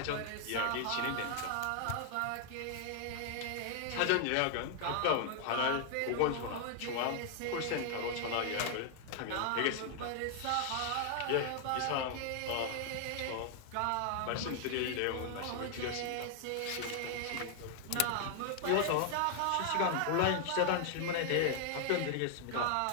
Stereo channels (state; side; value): different; both; correlation 0.00